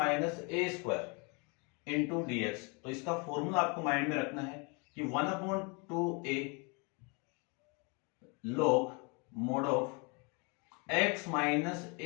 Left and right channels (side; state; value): right; quieter; 31.5 dB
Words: a square into d x. तो इसका फॉर्मूला आपको माइंड में रखना है कि 1/2a log mod of x minus